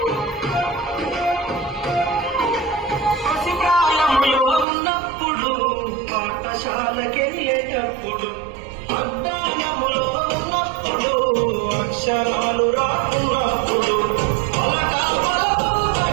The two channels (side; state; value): left; drops out; at 4.7 s